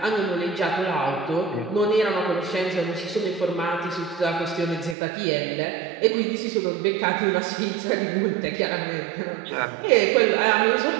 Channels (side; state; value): left; drops out; at 5.0 s